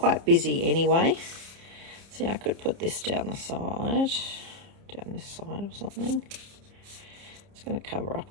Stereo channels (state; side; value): late; left; 30 ms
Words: busy anyway. See, I could put this down this side or something. It's going to cover up